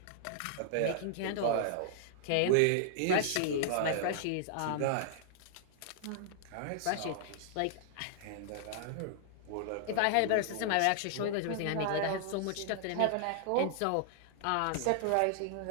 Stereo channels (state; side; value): different; both; correlation -0.01